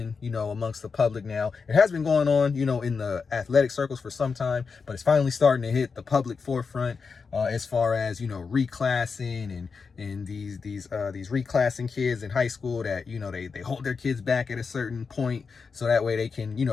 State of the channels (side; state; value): right; quieter; 5.2 dB